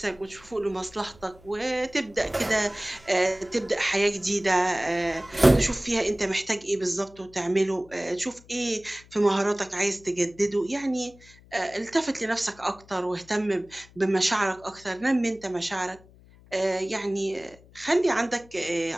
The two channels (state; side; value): noise; left; hum, 25 dB below the sound